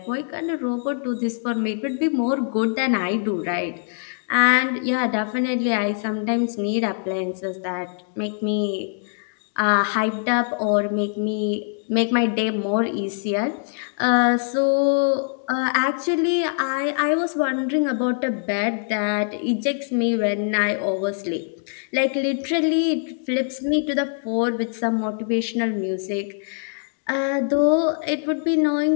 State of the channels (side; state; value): right; silent; digital silence